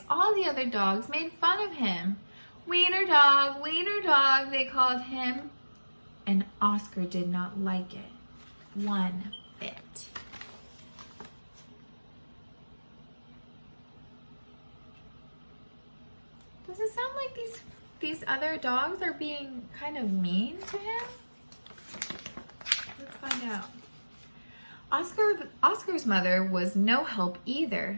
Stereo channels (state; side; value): inverted; both; correlation -1.00